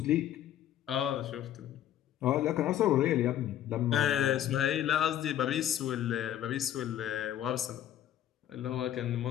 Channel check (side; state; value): right; quieter; 11.3 dB